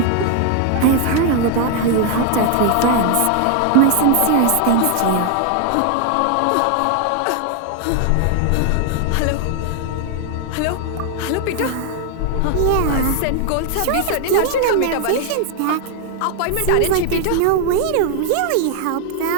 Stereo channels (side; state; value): both; different; correlation 0.00